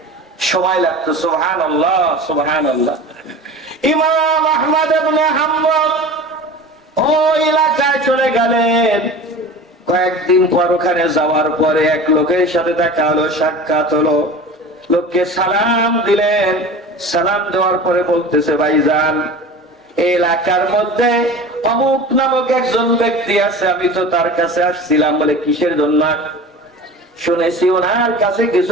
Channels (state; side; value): normal; both; correlation 0.36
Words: সময় লাগতো। সুবহানাল্লাহ, সুবহানাল্লাহ। ইমাম আহমদ ইবনে হাম্বল ওই এলাকায় চলে গেলেন। কয়েকদিন পর ওখানে যাওয়ার পরে এক লোকের সাথে দেখা হলো, সাক্ষাৎ হলো। লোককে সালাম দিলেন। সালাম দেওয়ার পরে বলতেছে, ভাইজান, এই এলাকার মধ্যে অমুক নামক একজন ব্যক্তি আছে, আমি তো তার কাছে আসছিলাম। বলে কিসের জন্য? শুনেছি ওনার কাছে